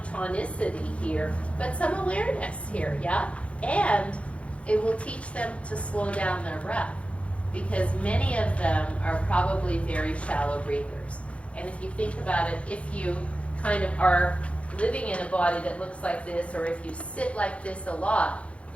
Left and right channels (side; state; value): right; late; 0.062 ms